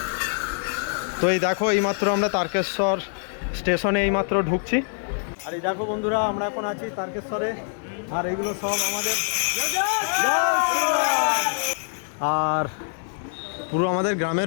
তো এই দেখো, এইমাত্র আমরা তারকেশ্বর স্টেশনে এইমাত্র ঢুকছি। আর এই দেখো বন্ধুরা, আমরা এখন আছি তারকেশ্বরে। আর এইগুলো সব আমাদের, আর পুরো আমাদের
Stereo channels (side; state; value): right; silent; 62 dB below the other